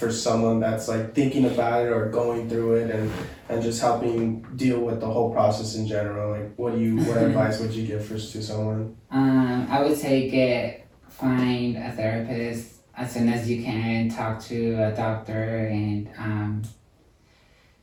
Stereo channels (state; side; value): identical; both; correlation 1.00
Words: someone that's like thinking about it or going through it and just helping deal with the whole process in general? Like, what advice would you give to someone? I would say find a therapist as soon as you can. Talk to a doctor, and